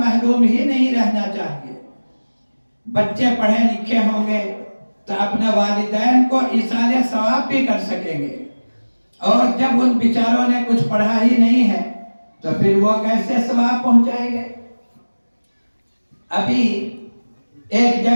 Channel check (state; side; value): inverted; both; correlation -1.00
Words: ہی نہیں رہنا چاہیے۔ بچے پڑھے لکھے ہوں گے تو اپنے والدین کو ایصال ثواب بھی کر سکیں گے، اور جب ان بیچاروں نے کچھ پڑھا ہی نہیں ہے تو پھر وہ کیسے ثواب پہنچائیں گے۔ ابھی ایک